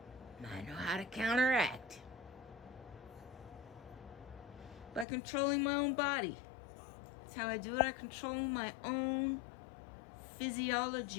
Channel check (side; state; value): right; drops out; at 5.1 s